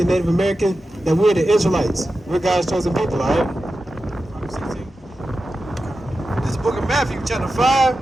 and Native American that we're the Israelites. We're God's chosen people, alright? This is the book of Matthew, chapter 5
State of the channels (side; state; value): both; normal; correlation 0.92